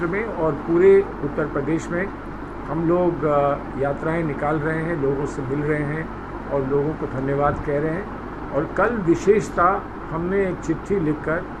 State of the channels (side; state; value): both; identical; correlation 1.00